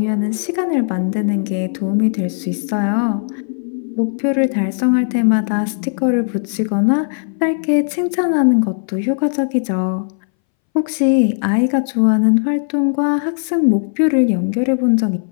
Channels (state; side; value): silent; right; 64 dB below the other